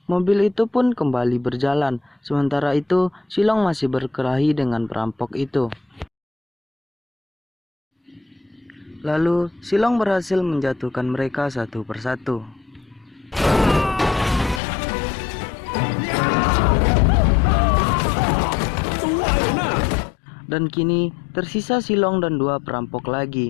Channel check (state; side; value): drops out; right; at 14.6 s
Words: mobil itu pun kembali berjalan. Sementara itu Silong masih berkelahi dengan perampok itu. Lalu Silong berhasil menjatuhkan mereka satu persatu. Dan kini tersisa Silong dan dua perampok